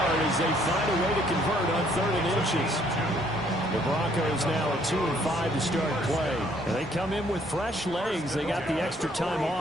as they find a way to convert on 3rd and inches. The Broncos now at 2-5 to start play. And they come in with fresh legs. They got the extra time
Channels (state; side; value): normal; both; correlation 0.64